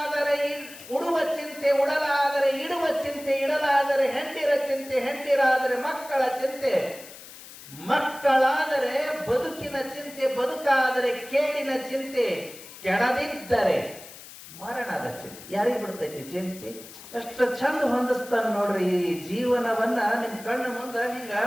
ಉಡುವ ಚಿಂತೆ, ಉಡಲಾದರೆ ಇಡುವ ಚಿಂತೆ, ಇಡಲಾದರೆ ಹೆಂಡಿರ ಚಿಂತೆ, ಹೆಂಡಿರಾದರೆ ಮಕ್ಕಳ ಚಿಂತೆ, ಮಕ್ಕಳಾದರೆ ಬದುಕಿನ ಚಿಂತೆ, ಬದುಕಾದರೆ ಕೇಳಿನ ಚಿಂತೆ, ಕೆಡದಿದ್ದರೆ ಮರಣದ ಚಿಂತೆ. ಯಾರಿಗೆ ಬಿಡ್ತೈತಿ ಚಿಂತೆ? ಎಷ್ಟು ಚಂದ ಹೊಂದಿಸ್ತಾನ ನೋಡ್ರಿ ಈ ಜೀವನವನ್ನ. ನಿಮ್ ಕಣ್ಣು ಮುಂದ ಹಿಂಗ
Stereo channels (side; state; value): left; noise; hiss, 16 dB below the sound